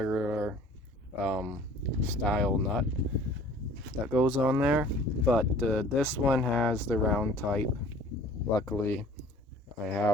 style nut that goes on there, but this one has the round type. Luckily I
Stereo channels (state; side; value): normal; both; correlation 0.50